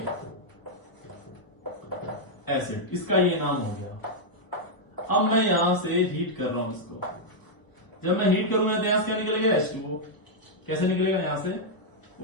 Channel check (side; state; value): right; late; 1.0 ms